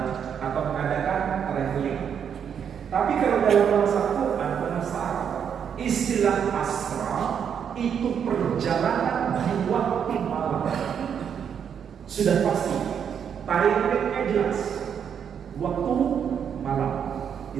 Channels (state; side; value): quieter; left; 7.9 dB